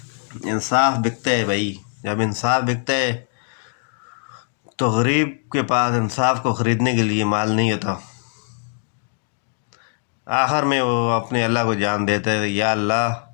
انصاف بکتا ہے بھائی، جب انصاف بکتا ہے تو غریب کے پاس انصاف کو خریدنے کے لیے مال نہیں ہوتا۔ آخر میں وہ اپنے اللہ کو جان دیتا ہے، یا اللہ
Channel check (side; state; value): right; silent; 58 dB below the other